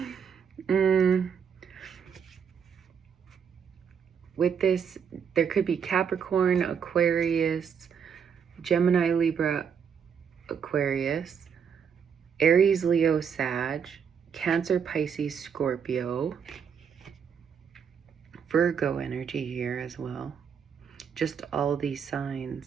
With this, there could be Capricorn, Aquarius, Gemini, Libra, Aquarius, Aries, Leo, Sag, Cancer, Pisces, Scorpio, Virgo energy here as well. Just all these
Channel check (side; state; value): left; quieter; 7.1 dB